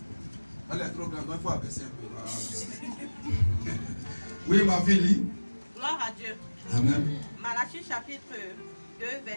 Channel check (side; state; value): both; inverted; correlation -1.00